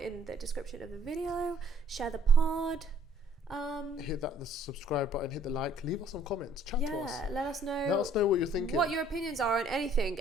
the description of the video. Share the pod. Hit the subscribe button, hit the like, leave us some comments, chat to us. Let us know. Let us know what you're thinking. What your opinions are on anything,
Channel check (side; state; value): both; normal; correlation 0.60